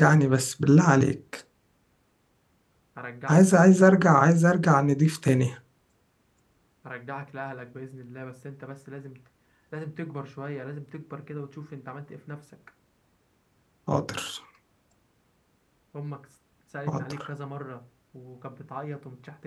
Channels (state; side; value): identical; both; correlation 1.00